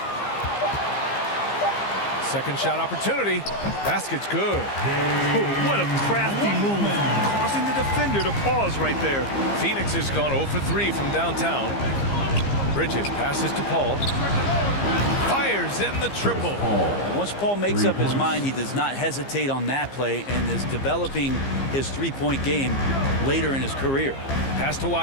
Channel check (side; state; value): right; late; 15 ms